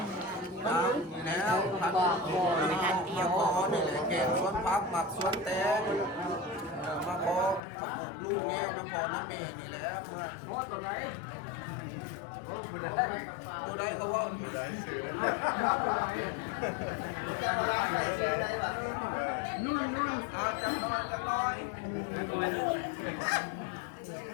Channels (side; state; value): right; drops out; at 7.6 s